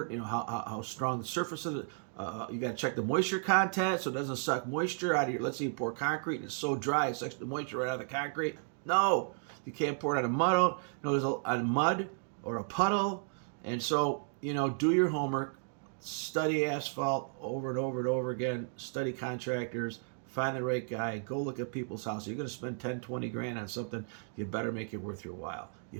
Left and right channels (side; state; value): left; silent; 55 dB below the other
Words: You know how strong the surface of the. You got to check the moisture content so it doesn't suck moisture out of your. Let's say you pour concrete and it's so dry it sucks the moisture right out of the concrete. No, you can't pour it on a mud. No, there's a mud or a puddle, and so do your homework. Study asphalt over and over and over again. Study contractors. Find the right guy. Go look at people's houses. You're going to spend 10, 20 grand on something. You better make it worth your while. You